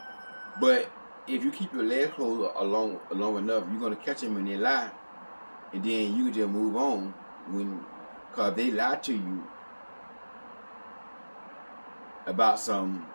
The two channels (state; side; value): inverted; both; correlation -1.00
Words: But if you keep your legs closed long enough, you're gonna catch them when they lie, and then you can just move on. Cause they lie to you about something,